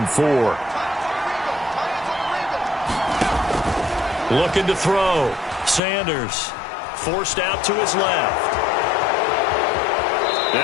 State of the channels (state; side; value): drops out; right; at 5.8 s